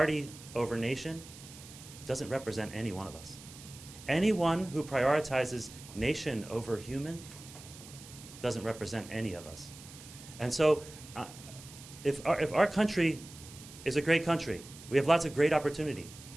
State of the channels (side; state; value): right; noise; hiss, 17 dB below the sound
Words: over nation doesn't represent any one of us. Anyone who prioritizes nation over human doesn't represent any of us. And so if our country is a great country, we have lots of great opportunity.